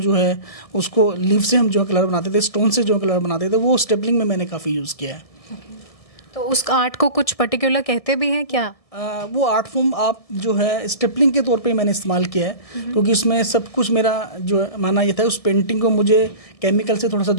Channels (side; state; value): right; late; 1.6 ms